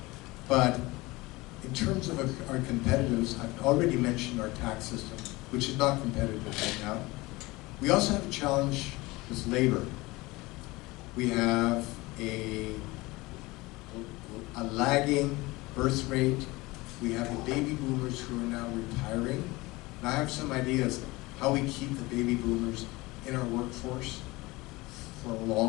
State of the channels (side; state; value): right; quieter; 21.7 dB